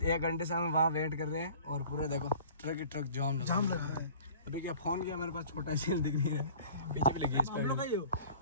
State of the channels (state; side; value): inverted; both; correlation -0.46